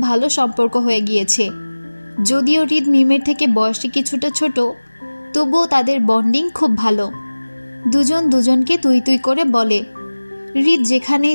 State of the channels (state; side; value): inverted; both; correlation -1.00